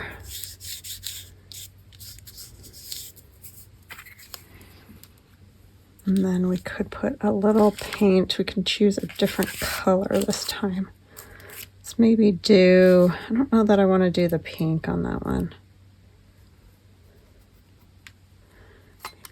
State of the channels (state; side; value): identical; both; correlation 1.00